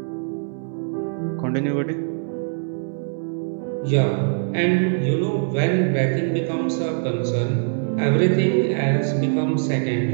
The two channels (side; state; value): left; silent; 64 dB below the other